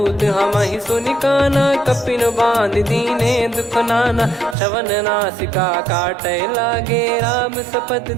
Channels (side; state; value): left; drops out; at 4.5 s